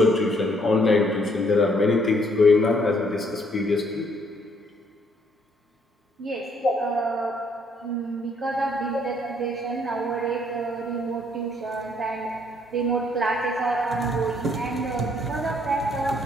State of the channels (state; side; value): normal; both; correlation 0.67